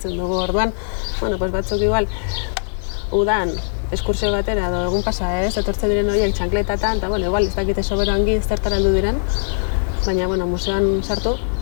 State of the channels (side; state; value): right; silent; digital silence